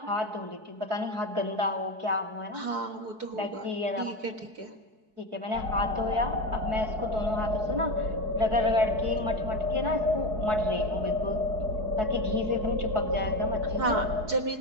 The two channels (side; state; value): left; late; 4.7 ms